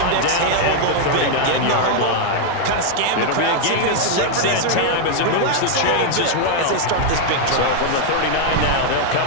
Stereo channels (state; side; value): different; both; correlation 0.00